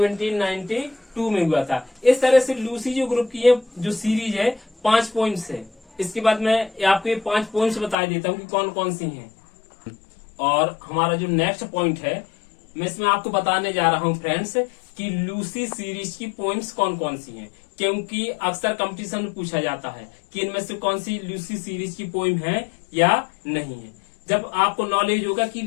में हुआ था। इस तरह से लूसी जो ग्रुप की है जो सीरीज है 5 पॉइंट्स है। इसके बाद मैं आपको ये 5 पॉइंट्स बता देता हूँ कि कौन कौन सी हैं। और हमारा जो नेक्स्ट पॉइंट है, मैं इसमें आपको बताने जा रहा हूँ फ्रेंड्स कि लूसी सीरीज की पॉइंट्स कौन कौन सी हैं, क्योंकि अक्सर कंपटीशन में पूछा जाता है कि इनमें से कौन सी लूसी सीरीज की पोइम है या नहीं है। जब आपको नॉलेज होगा कि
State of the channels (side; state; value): right; drops out; at 8.0 s